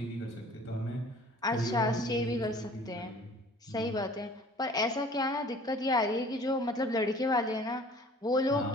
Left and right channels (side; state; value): both; normal; correlation 0.50